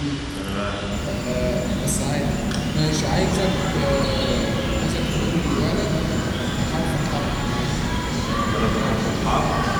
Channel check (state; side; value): identical; both; correlation 1.00